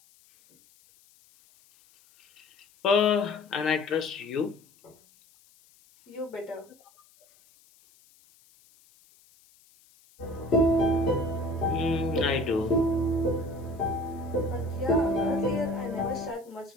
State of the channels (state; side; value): noise; left; hiss, 30 dB below the sound